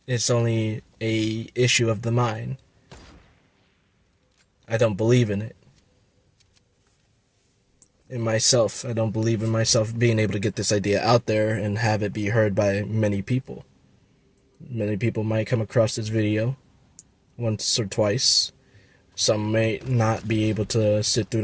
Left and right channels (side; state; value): both; identical; correlation 1.00